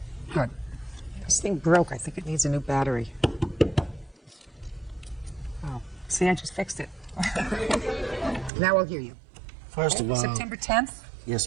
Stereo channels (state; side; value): drops out; left; at 8.5 s